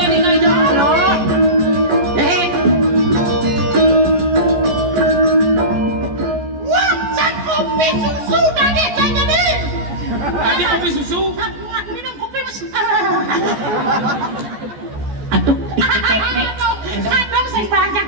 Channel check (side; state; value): left; late; 14 ms